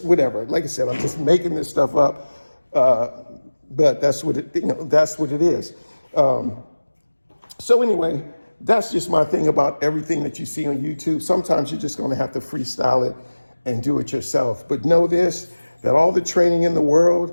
whatever. Like I said, I'm just making this stuff up, but that's what it, you know, that's what it is. So anyway, that's just my thing about everything that you see on YouTube. Sometimes you're just going to have to freestyle it and do it yourself. But know this, that all the training in the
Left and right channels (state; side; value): inverted; both; correlation -1.00